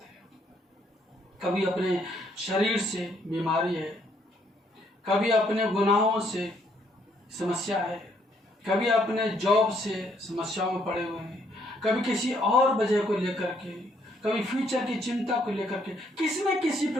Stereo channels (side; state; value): both; normal; correlation 0.69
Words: हैं। कभी अपने शरीर से बीमारी है, कभी अपने गुनाहों से समस्या है, कभी अपने जॉब से समस्याओं में पड़े हुए हैं, कभी किसी और वजह को लेकर के, कभी फ्यूचर की चिंता को लेकर के किसी न किसी